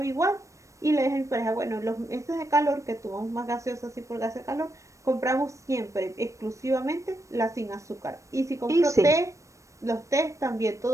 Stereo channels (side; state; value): left; late; 0.15 ms